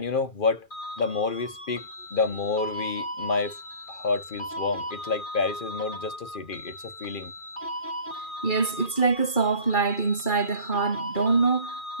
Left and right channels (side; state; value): right; late; 2.3 ms